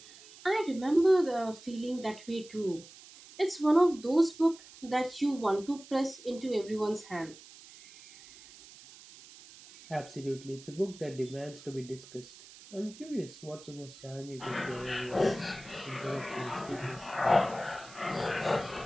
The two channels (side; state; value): right; noise; hiss, 19 dB below the sound